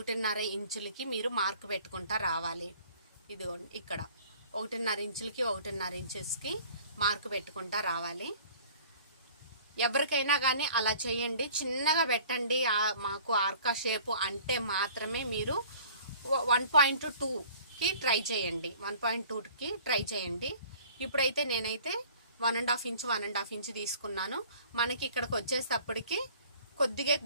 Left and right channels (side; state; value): both; inverted; correlation -0.50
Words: ఇంచులకి మీరు మార్క్ పెట్టుకుంటా రావాలి. ఇదిగోండి ఇక్కడ 1.5 ఇంచెస్కి మార్క్ పెట్టుకుంటా రావాలి. ఎవరికైనా కానీ అలా చేయండి, చిన్నగా పెట్టండి. మాకు ఆర్కా షేప్ అంటే మాత్రమే మీరు 1.2కి ట్రై చేయండి, 1.2కి ట్రై చేయండి. ఇప్పుడైతే నేనైతే 1.5 ఇంచ్ తీసుకున్నాను. మనకి ఇక్కడికి వచ్చేటప్పటికి కొద్దిగా